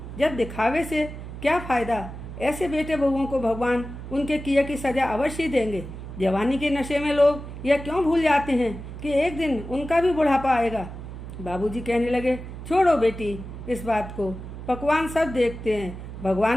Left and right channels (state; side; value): noise; right; hum, 10 dB below the sound